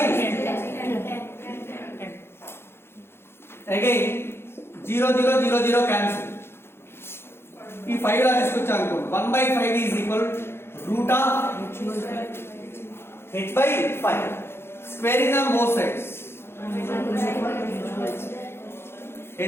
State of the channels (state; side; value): late; right; 0.12 ms